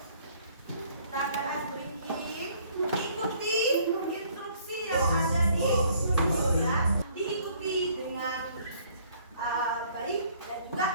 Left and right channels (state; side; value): inverted; both; correlation -0.60